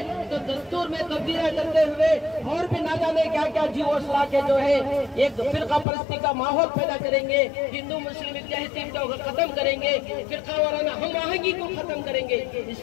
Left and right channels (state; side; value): drops out; right; at 5.9 s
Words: तो दस्तूर में तब्दीलियां करते हुए और भी ना जाने क्या क्या जीवोसला के जो है एक फिरका परस्ती का माहौल पैदा करेंगे, हिंदू मुस्लिम इत्तेहाद को खत्म करेंगे, फिरका वाराना हम आहंगी को खत्म करेंगे।